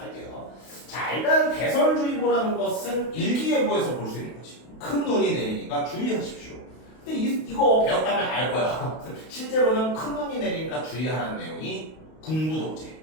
자, 일단 배설주의보라는 것은 일기예보에서 볼 수 있는 거지. 큰 눈이 내리니까 주의하십시오. 근데 이거 배웠다면 알 거야. 실제로는 큰 눈이 내리니까 주의하라는 내용이 군부독재.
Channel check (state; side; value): late; right; 32 ms